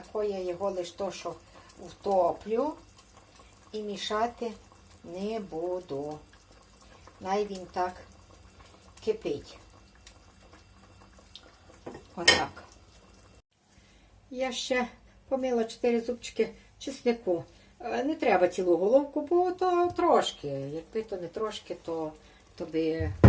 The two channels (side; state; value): both; identical; correlation 1.00